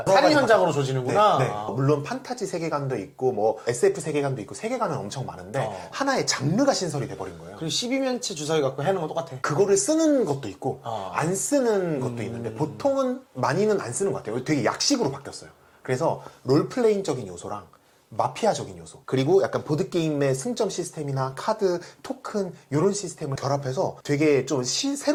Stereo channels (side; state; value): both; identical; correlation 1.00